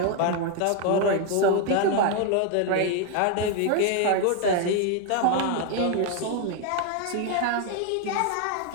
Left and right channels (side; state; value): both; different; correlation 0.01